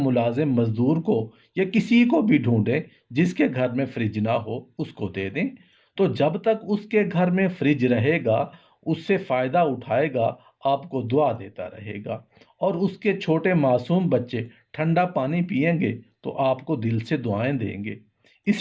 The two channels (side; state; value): both; identical; correlation 1.00